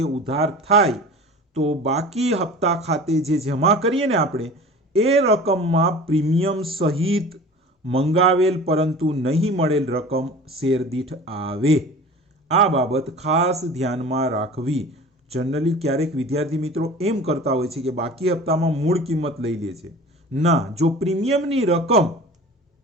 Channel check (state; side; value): normal; both; correlation 0.39